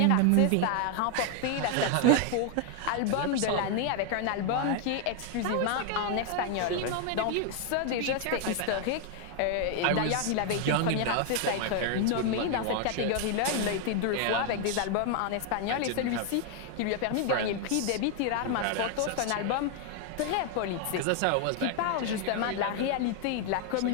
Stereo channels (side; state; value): both; different; correlation 0.00